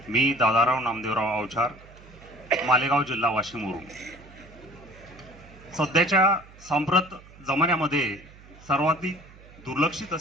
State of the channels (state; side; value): noise; right; hum, 22 dB below the sound